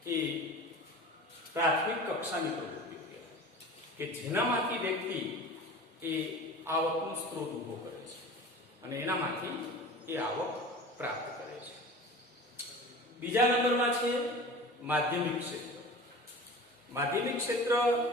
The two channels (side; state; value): both; normal; correlation 0.37